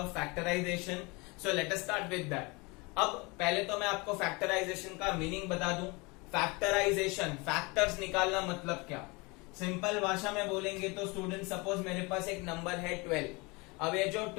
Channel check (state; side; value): quieter; right; 26.8 dB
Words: factorization. So let us start with that. अब पहले तो मैं आपको factorization का meaning बता दूं. Factorization, factors निकालना मतलब क्या? सिंपल भाषा में बोलेंगे तो स्टूडेंट सपोज मेरे पास एक नंबर है 12. अब ये जो